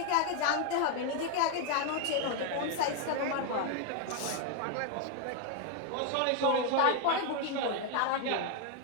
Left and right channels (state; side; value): different; both; correlation 0.01